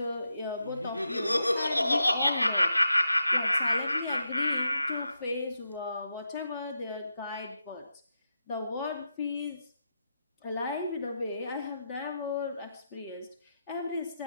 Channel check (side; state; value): both; inverted; correlation -0.86